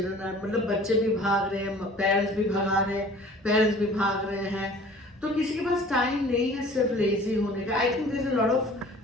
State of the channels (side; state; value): both; normal; correlation 0.48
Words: are, मतलब बच्चे भी भाग रहे हैं, पेरेंट्स भी भगा रहे हैं, पेरेंट्स भी भाग रहे हैं, तो किसी के पास टाइम नहीं है सिर्फ लेजी होने का. I think there is a lot of